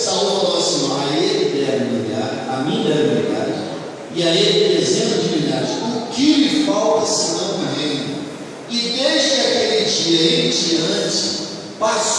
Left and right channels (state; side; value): identical; both; correlation 1.00